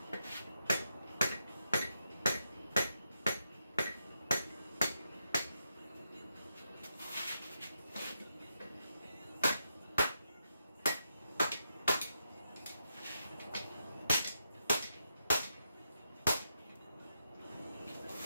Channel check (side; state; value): both; inverted; correlation -0.84